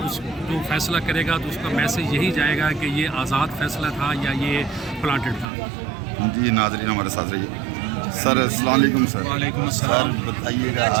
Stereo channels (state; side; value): drops out; left; at 5.5 s